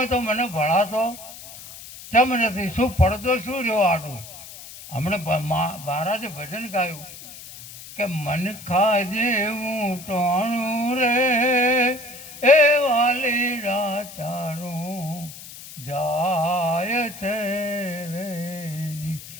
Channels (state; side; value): noise; left; hiss, 15 dB below the sound